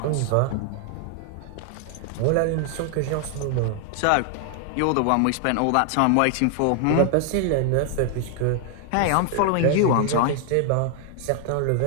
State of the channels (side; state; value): both; different; correlation 0.00